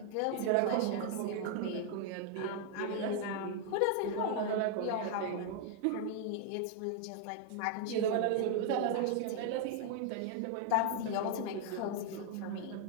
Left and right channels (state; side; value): different; both; correlation 0.00